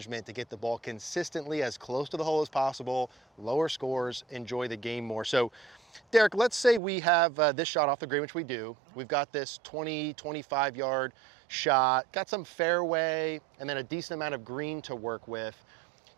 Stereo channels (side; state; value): left; drops out; at 6.8 s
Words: to get the ball consistently as close to the hole as possible, lower scores, enjoy the game more. So Derek, let's say we have this shot off the green, which we do. We've got this 20, 25 yard shot, got some fairway, and then a decent amount of green to work with.